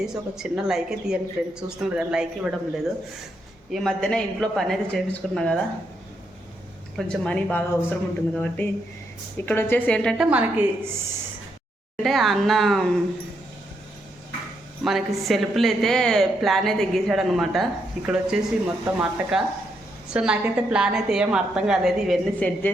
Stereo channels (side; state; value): both; normal; correlation 0.79